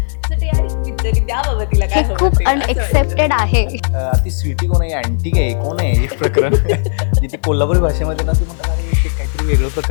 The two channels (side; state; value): right; silent; digital silence